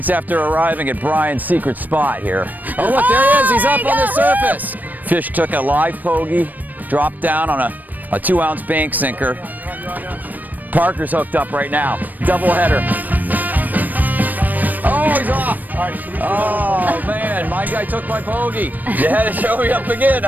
after arriving at Brian's secret spot here. Oh look, there he is, he's up on the surface. Fish took a live pogie, dropped down on a 2-ounce bank sinker. Parker's hooked up right now. Double header. Oh, he's off. Oh man, my guy took my pogie. You had to show me up again,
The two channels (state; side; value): late; left; 0.085 ms